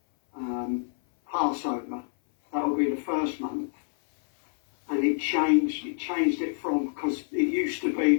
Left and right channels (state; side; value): silent; right; 58 dB below the other